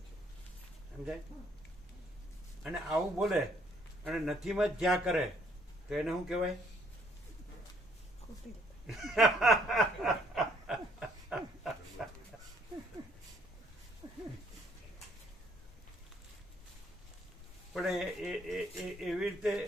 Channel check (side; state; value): both; normal; correlation 0.65